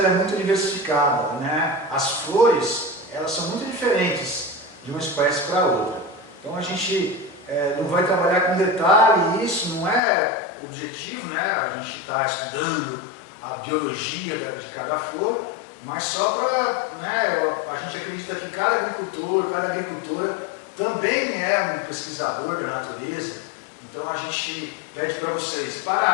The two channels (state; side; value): drops out; right; at 10.0 s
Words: é muito diversificada, né? As flores, elas são muito diferentes de uma espécie para outra. Então, a gente não vai trabalhar com detalhe, isso não é o objetivo, né? A gente está estudando a biologia de cada flor, mas só para, né, a gente acredita que cada agricultor, cada agricultora também é um pesquisador da natureza. Então a gente pede para vocês